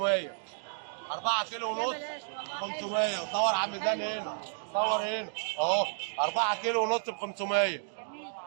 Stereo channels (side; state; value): left; silent; digital silence